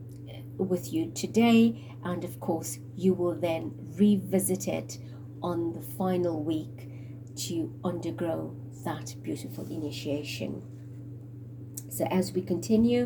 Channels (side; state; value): both; identical; correlation 1.00